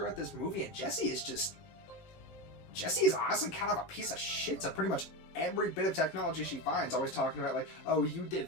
this movie, and Jessie is honestly kind of a piece of shit to pretty much every bit of technology she finds. Always talking about, like, oh, you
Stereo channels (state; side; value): late; right; 19 ms